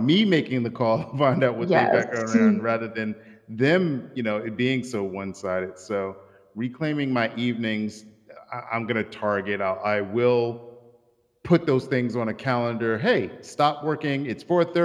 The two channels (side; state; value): both; identical; correlation 1.00